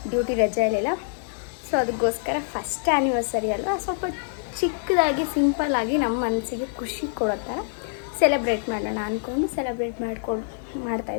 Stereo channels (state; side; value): silent; right; digital silence